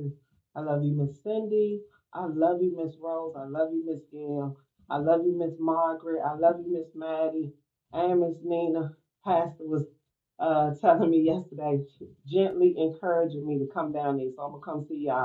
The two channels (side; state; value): both; identical; correlation 1.00